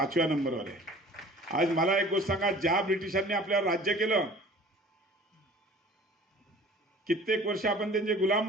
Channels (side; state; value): both; normal; correlation 0.47